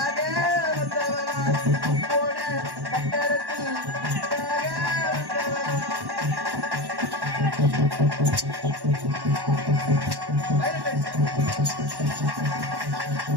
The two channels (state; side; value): late; left; 1.1 ms